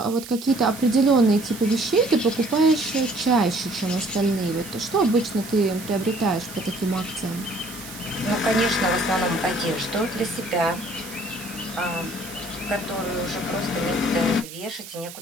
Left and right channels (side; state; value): right; noise; hiss, 14 dB below the sound